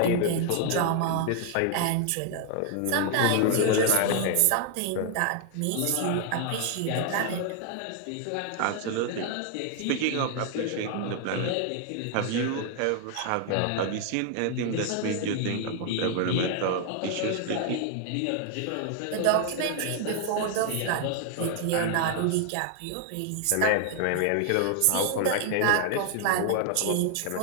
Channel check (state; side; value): different; both; correlation 0.00